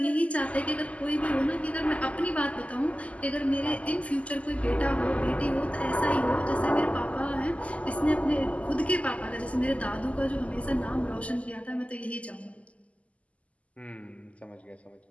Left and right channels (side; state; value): right; late; 0.067 ms